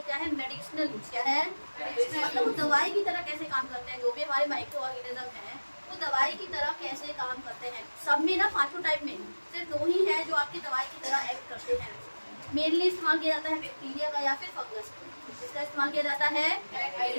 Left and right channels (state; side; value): inverted; both; correlation -1.00